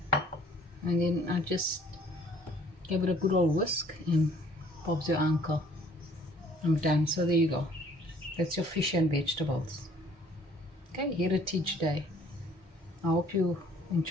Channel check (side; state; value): both; normal; correlation 0.57